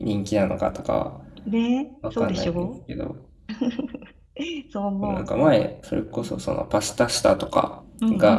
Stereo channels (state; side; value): identical; both; correlation 1.00